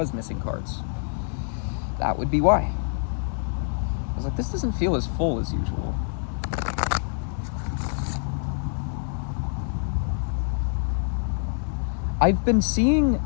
missing cards. That would be why. I was like, this doesn't feel as full as usual. I've been seeing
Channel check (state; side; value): silent; right; 61 dB below the other